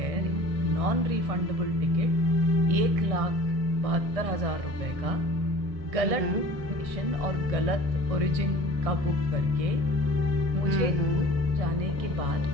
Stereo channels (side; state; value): left; late; 1.6 ms